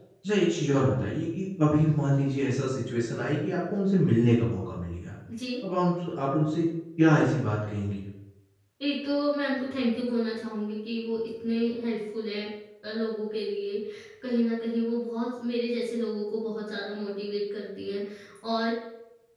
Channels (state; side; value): identical; both; correlation 1.00